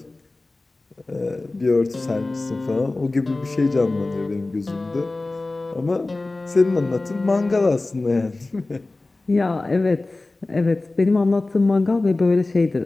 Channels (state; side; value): quieter; right; 3.1 dB